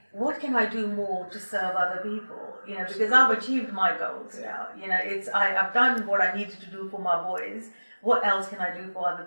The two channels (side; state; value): both; inverted; correlation -1.00